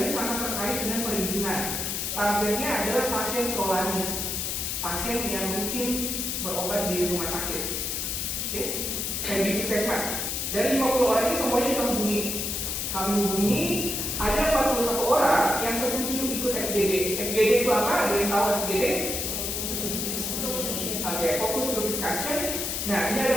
ini sangat terkait dengan perizinan. Targetnya adalah pasien prolanis, pasien yang rutin berobat di rumah sakit, dan di puskesmas. Dari 50 orang ini semuanya kita hubungi. Kami hubungi, ada 41 orang yang setuju ikut FGD. FGD itu apa? Ada yang tahu FGD? Oke, fokus group discussion. Nah, ini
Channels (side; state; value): left; noise; hiss, 2 dB below the sound